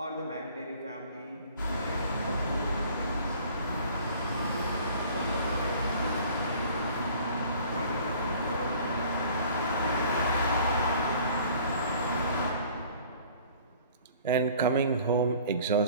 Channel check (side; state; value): both; inverted; correlation -0.51